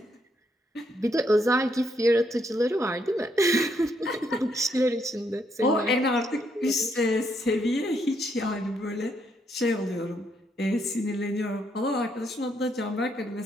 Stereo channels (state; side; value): normal; both; correlation 0.74